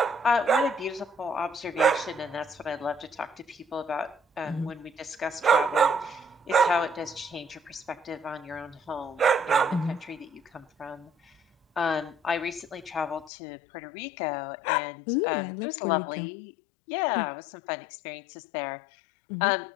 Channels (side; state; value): right; drops out; at 13.3 s